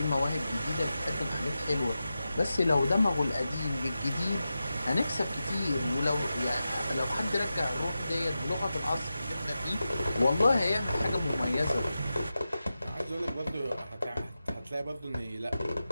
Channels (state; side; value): inverted; both; correlation -0.92